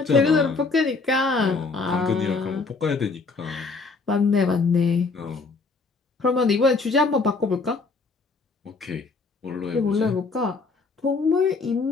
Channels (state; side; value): quieter; right; 4.1 dB